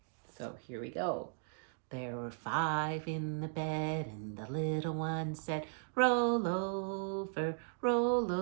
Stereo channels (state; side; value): silent; left; digital silence